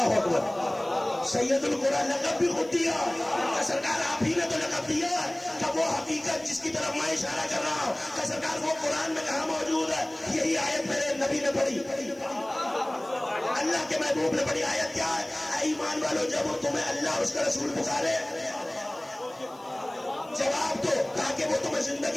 اکبر. سید القرآ لقب بھی خود دیا. سرکار آپ ہی نے تو لقب دیا کہ وہ حقیقت جس کی طرف میں اشارہ کر رہا ہوں کہ سرکار وہ قرآن میں کہاں موجود ہے. یہی آیت میرے نبی نے پڑھی، اللہ کے محبوب نے پڑھی. آیت کیا ہے؟ اے ایمان والو، جب تمہیں اللہ اس کا رسول پکارے، جواب دو تاکہ وہ تمہیں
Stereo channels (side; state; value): left; noise; hiss, 27 dB below the sound